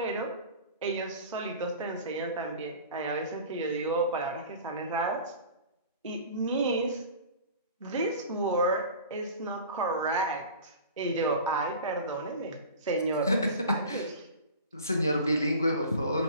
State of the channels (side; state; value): both; inverted; correlation -0.39